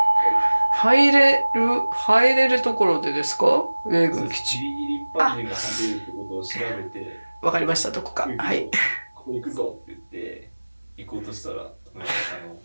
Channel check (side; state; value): both; inverted; correlation -1.00